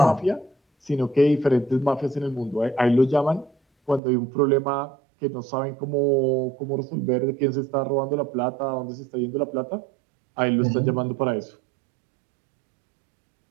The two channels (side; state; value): left; drops out; at 4.0 s